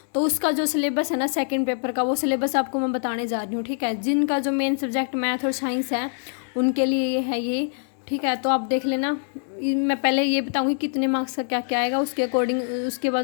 तो उसका जो सिलेबस है ना सेकंड पेपर का, वो सिलेबस आपको मैं बताने जा रही हूँ। ठीक है, जिनका जो मेन सब्जेक्ट मैथ और साइंस है उनके लिए ये है ये। ठीक है, तो आप देख लेना। मैं पहले ये बताऊँगी कितने मार्क्स का क्या क्या आएगा, उसके अकॉर्डिंग उसके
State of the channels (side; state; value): right; silent; digital silence